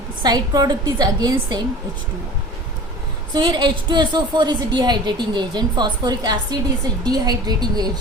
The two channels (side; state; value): both; normal; correlation 0.39